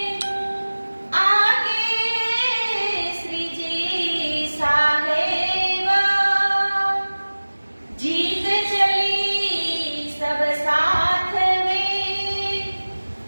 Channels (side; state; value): both; inverted; correlation -1.00